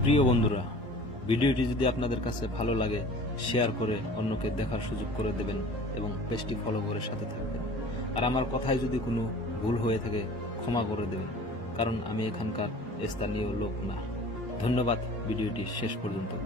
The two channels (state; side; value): normal; both; correlation 0.44